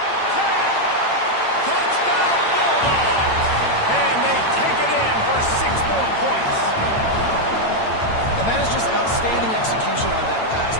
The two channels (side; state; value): right; late; 8.9 ms